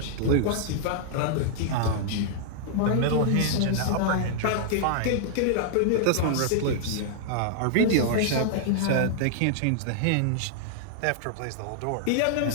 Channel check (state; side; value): different; both; correlation -0.01